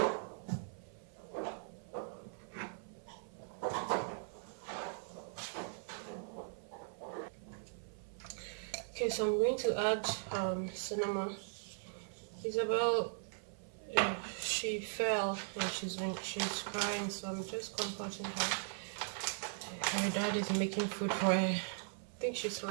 Okay, so I'm going to add cinnamon. Isabel, she fell when she's crying, so I'm just comforting her. Her dad is making food for her. I think she's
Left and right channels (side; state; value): left; silent; 52 dB below the other